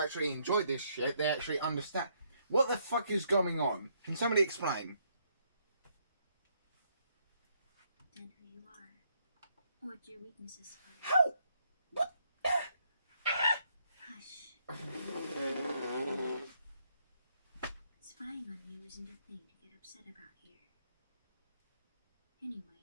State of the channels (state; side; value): inverted; both; correlation -0.72